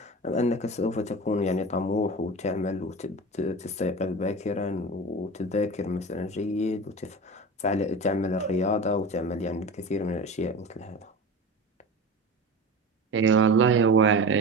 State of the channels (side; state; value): both; normal; correlation 0.30